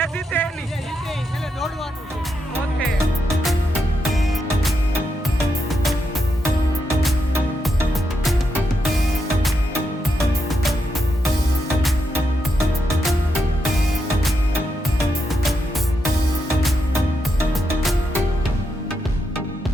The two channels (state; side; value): normal; both; correlation 0.84